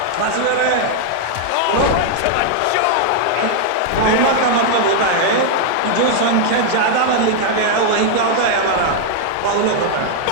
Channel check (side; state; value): both; different; correlation 0.00